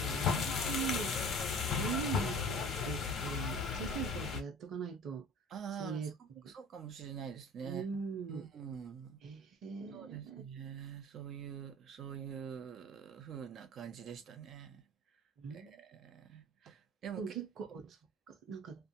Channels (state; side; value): normal; both; correlation 0.42